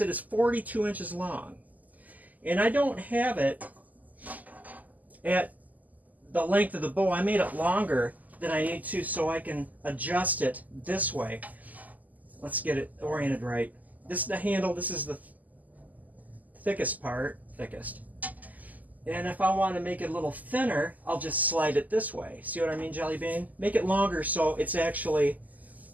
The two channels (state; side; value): late; left; 0.079 ms